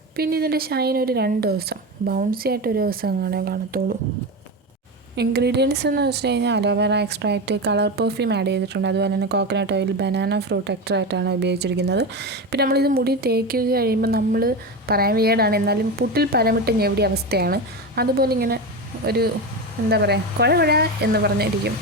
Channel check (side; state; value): both; normal; correlation 0.20